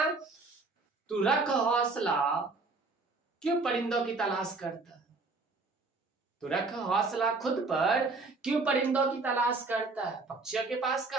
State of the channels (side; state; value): left; quieter; 3.7 dB